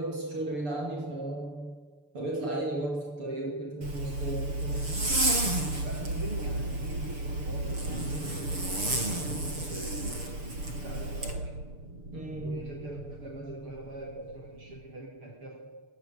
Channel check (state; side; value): late; left; 6.8 ms